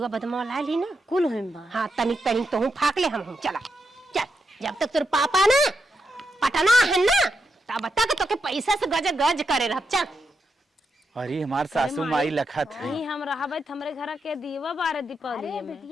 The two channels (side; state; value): both; normal; correlation 0.84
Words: बदमा ला ली ना कुल होइम बा। हाँ तनिक तनिक तो हूँ फाक ले हम चला चल जब तक तेरे पापा ना पटना है ना तब तक तो के पैसा से गज गज करे रह चल। अरे हमार सासू माई लखत है नहीं हम रहबे हमरे घर के दीवा बारे दीपावली अरे में।